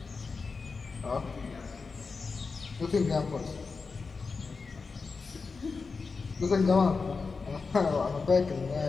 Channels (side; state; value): right; quieter; 4.6 dB